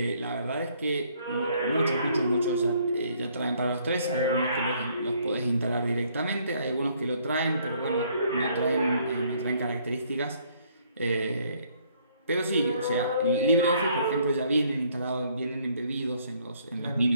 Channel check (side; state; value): both; inverted; correlation -0.65